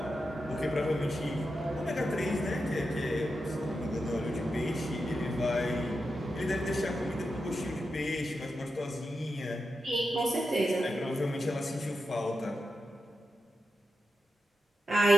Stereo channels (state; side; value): normal; both; correlation 0.88